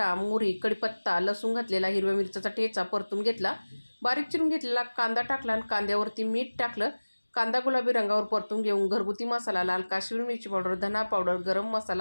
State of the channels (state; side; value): inverted; both; correlation -1.00